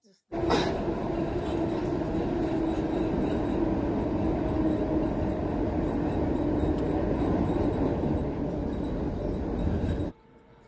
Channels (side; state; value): both; identical; correlation 1.00